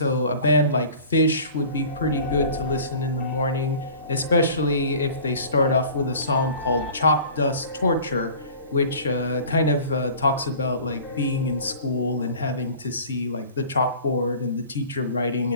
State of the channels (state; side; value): inverted; both; correlation -0.44